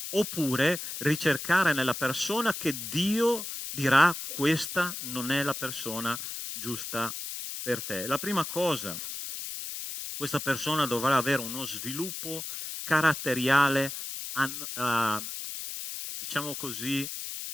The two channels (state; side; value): noise; left; hiss, 7 dB below the sound